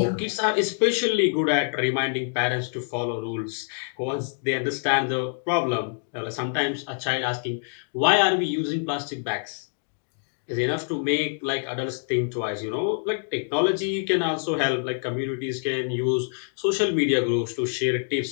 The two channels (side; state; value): right; silent; digital silence